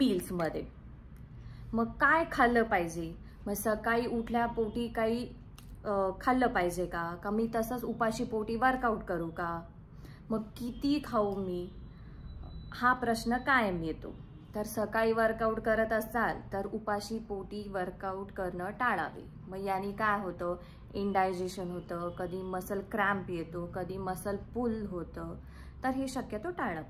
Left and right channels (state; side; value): identical; both; correlation 1.00